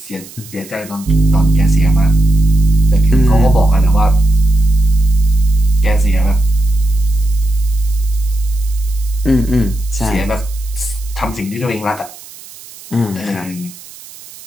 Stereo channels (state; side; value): noise; right; hiss, 19 dB below the sound